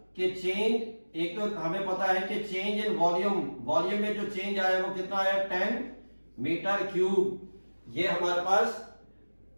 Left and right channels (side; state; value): both; inverted; correlation -1.00